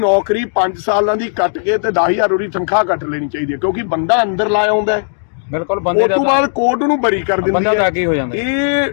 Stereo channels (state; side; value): silent; right; digital silence